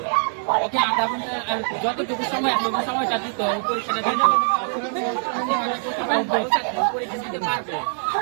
ওকে আধা ঘন্টা যতটুকু সময় আছে ওই সময়টা দিত, পরীক্ষাটা দিত, পরীক্ষা দিতে পারবে,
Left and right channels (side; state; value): left; silent; digital silence